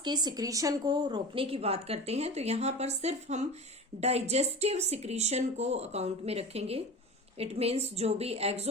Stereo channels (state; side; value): normal; both; correlation 0.32